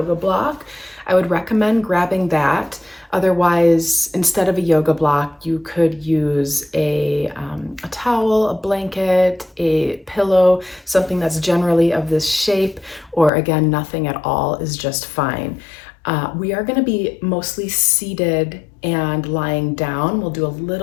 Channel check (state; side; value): drops out; right; at 13.3 s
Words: block, I would recommend grabbing that. Otherwise, instead of a yoga block, you could use a towel, a blanket, a pillow, something that's generally of this shape, or again, nothing at all is just fine. We are going to be mostly seated and lying down. We'll do a